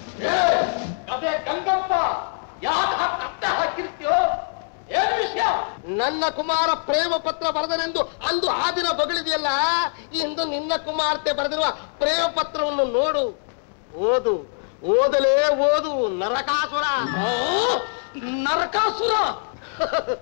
ಅದೇ ಗಂಗಪ್ಪ ಯಾಕೆ ಕತ್ತೆ ಹಾಕಿರ್ತೀಯೋ? ಏನು ವಿಷಯ? ನನ್ನ ಕುಮಾರ ಪ್ರೇಮ ಪತ್ರ ಬರೆದನೆಂದು ಅಂದು ಆ ದಿನ ಬಗಳಿದೆಯಲ್ಲ, ಇಂದು ನಿನ್ನ ಕುಮಾರ್ತೆ ಬರೆದಿರುವ ಪ್ರೇಮ ಪತ್ರವನ್ನು ನೋಡು, ಓದು. ಓದಲೇ ಓದು ನರಕಾಸುರ. ನರಕಾಸುರ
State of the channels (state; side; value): silent; right; 63 dB below the other